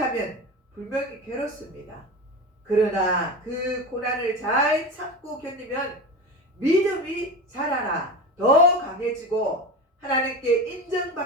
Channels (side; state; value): both; normal; correlation 0.26